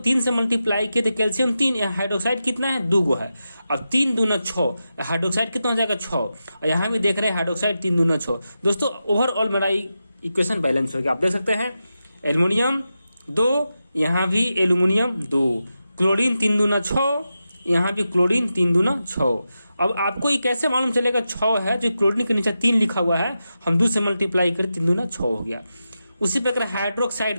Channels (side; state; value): both; inverted; correlation -0.90